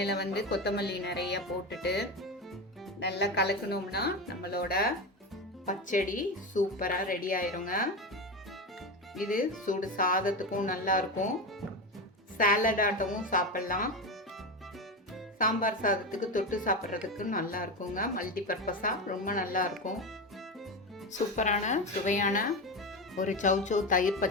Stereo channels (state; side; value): normal; both; correlation 0.19